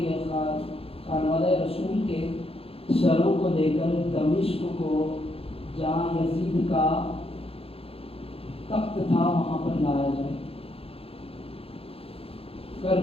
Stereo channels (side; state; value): right; late; 0.27 ms